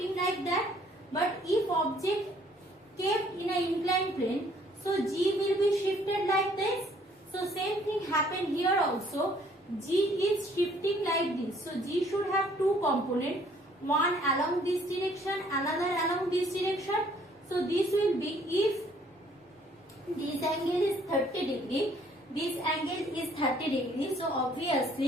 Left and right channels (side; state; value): both; normal; correlation 0.61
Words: like that. But if object kept in an inclined plane, so G will be shifted like this. So same thing happened here also. G is shifting like this. So G should have two components. One along this direction, another along this direction. So this will be, if this angle is 30 degree, this angle is 30 degree. So